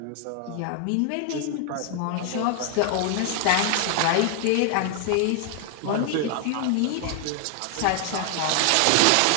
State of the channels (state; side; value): different; both; correlation 0.00